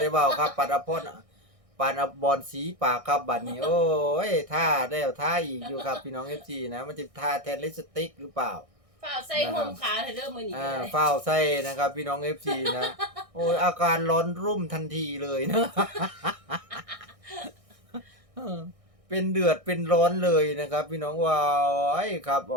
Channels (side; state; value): left; late; 1.6 ms